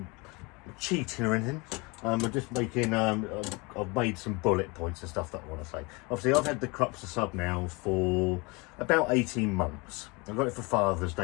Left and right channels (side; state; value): right; quieter; 27.3 dB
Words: cheating or anything. I'm just making, I've made some bullet points and stuff that I want to say. Obviously, I've had the Krupps The Sub now for about 18 months. I got it for Father's